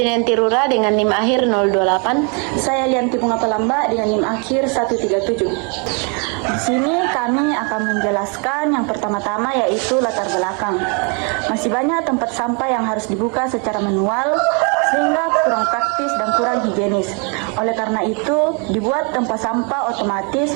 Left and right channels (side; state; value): left; quieter; 35.5 dB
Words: Rura dengan NIM akhir 028. Saya Lianti Bunga Pelamba dengan NIM akhir 137. Di sini kami akan menjelaskan yang pertama-tama, yaitu latar belakang. Masih banyak tempat sampah yang harus dibuka secara manual sehingga kurang praktis dan kurang higienis. Oleh karena itu, dibuat tempat sampah otomatis